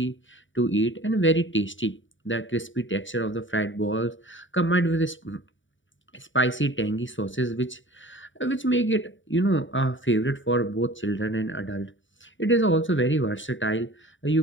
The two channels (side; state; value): right; late; 0.56 ms